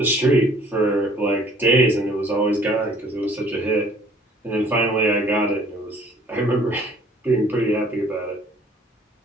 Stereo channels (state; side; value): normal; both; correlation 0.56